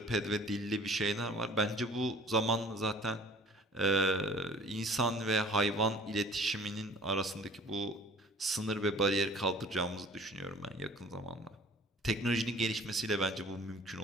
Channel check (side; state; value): both; normal; correlation 0.50